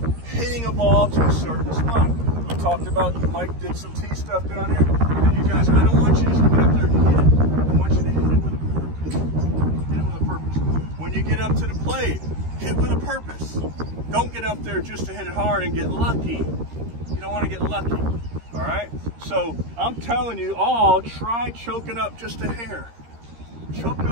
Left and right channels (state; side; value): late; left; 13 ms